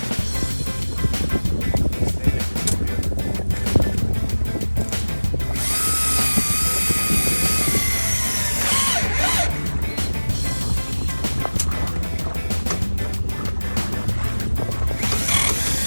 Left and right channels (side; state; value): both; inverted; correlation -1.00